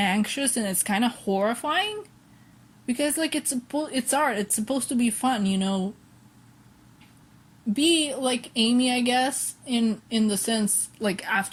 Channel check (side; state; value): both; identical; correlation 1.00